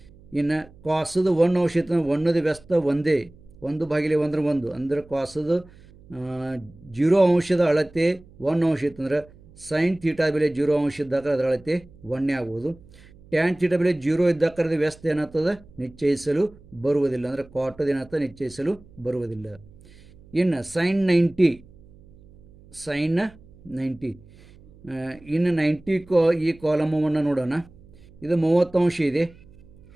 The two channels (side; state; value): right; noise; hum, 24 dB below the sound